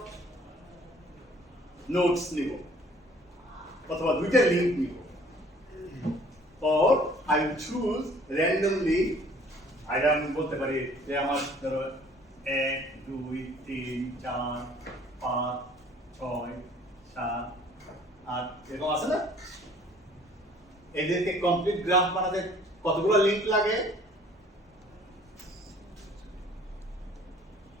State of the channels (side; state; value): both; normal; correlation 0.55